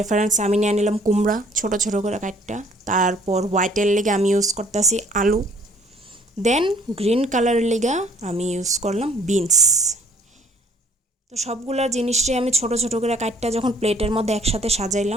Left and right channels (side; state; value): both; normal; correlation 0.57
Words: আমি নিয়ে নিলাম কুমড়া ছোট ছোট করে কাটটা। তারপর হোয়াইটের লেগে আমি ইউজ করতেছি আলু, দেন গ্রিন কালারের লেগে আমি ইউজ করলাম বিনস। তো সবগুলা জিনিসটাই আমি ছোট ছোট করে কাটটা যখন প্লেটের মধ্যে একসাথে